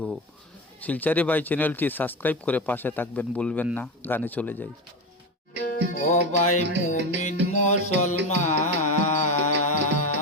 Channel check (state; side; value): normal; both; correlation 0.20